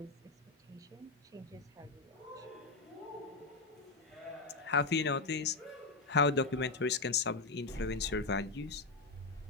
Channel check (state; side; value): quieter; right; 3.7 dB